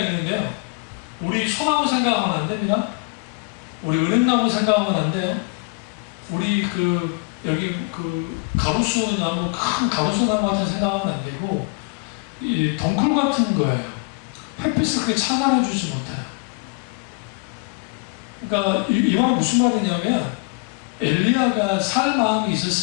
우리 소나무 생각하면 안 됩니다. 우리 은행나무 생각하면 안 돼요. 우리 여기 가로수 나무, 큰 가로수 나무 같은 생각하면 안 되고, 이 덩쿨 같은 거예요. 햇빛을 그렇게 차단해주지 못해요. 그러니까 이 말은 무슨 말이냐면, 엘리야가 살 마음이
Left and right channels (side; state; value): right; quieter; 31.4 dB